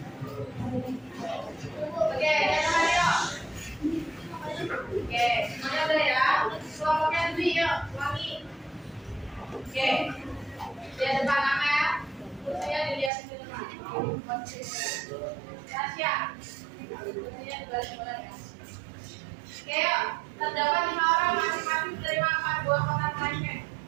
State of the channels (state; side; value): drops out; left; at 13.1 s